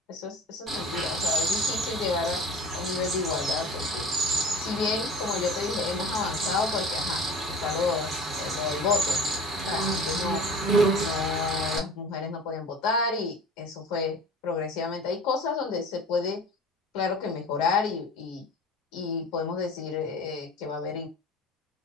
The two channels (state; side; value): normal; both; correlation 0.39